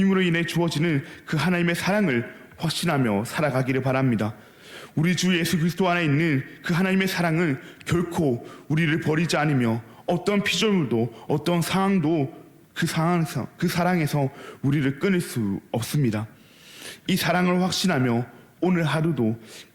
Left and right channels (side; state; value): both; identical; correlation 1.00